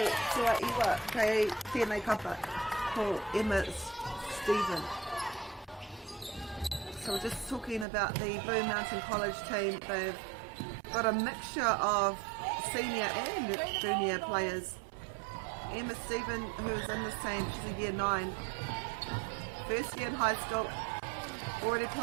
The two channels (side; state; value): left; drops out; at 7.9 s